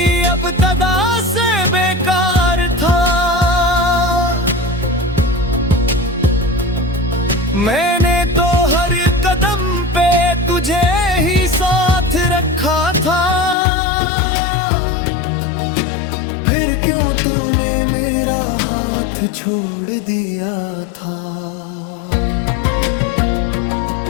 अब तदा से बेकार था। मैंने तो हर कदम पे तुझे ही साथ रखा था, फिर क्यों तूने मेरा हाथ छोड़ दिया था।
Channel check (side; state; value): right; drops out; at 13.6 s